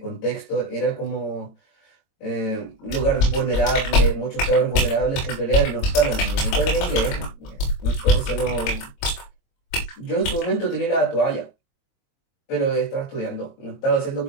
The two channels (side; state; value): right; late; 22 ms